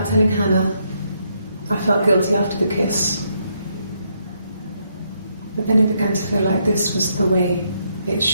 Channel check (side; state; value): both; inverted; correlation -0.76